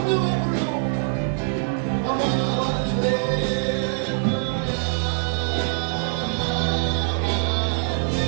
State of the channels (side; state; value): left; silent; 63 dB below the other